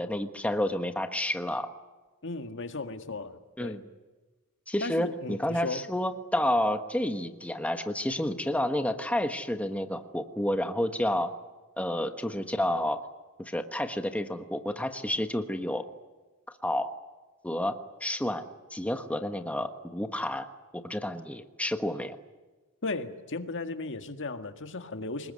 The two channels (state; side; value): normal; both; correlation 0.75